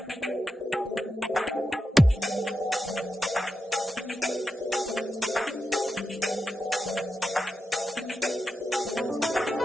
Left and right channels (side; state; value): both; normal; correlation 0.88